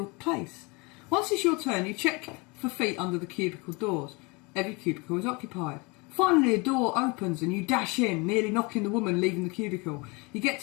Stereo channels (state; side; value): quieter; right; 27.9 dB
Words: place. Once it's your turn, you check for feet under the cubicle doors. Every cubicle is occupied. Finally, a door opens and you dash in, nearly knocking the woman leaving the cubicle. You get